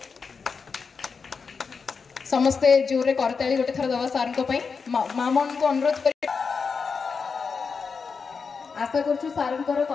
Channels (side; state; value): right; quieter; 5.3 dB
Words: समस्ते जोर रे करताली गोटे थर दबा सारंक पई मामन को अनुरोध करी आशा करछु सारंकर